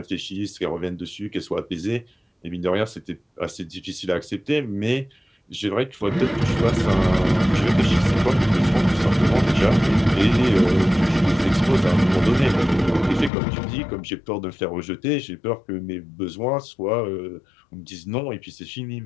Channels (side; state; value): right; drops out; at 13.3 s